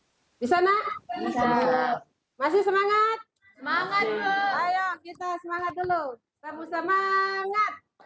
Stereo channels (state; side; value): identical; both; correlation 1.00